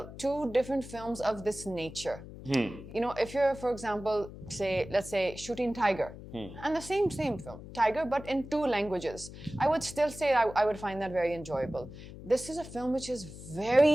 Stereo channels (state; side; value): noise; left; hum, 14 dB below the sound